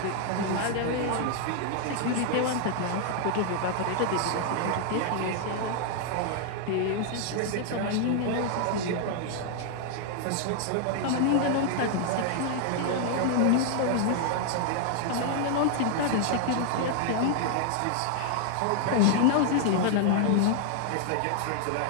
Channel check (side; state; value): both; different; correlation 0.00